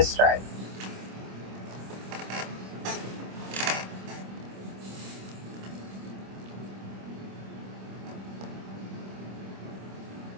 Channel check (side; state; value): left; late; 26 ms